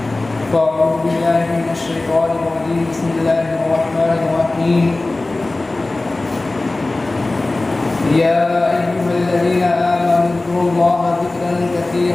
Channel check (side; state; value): right; quieter; 3.0 dB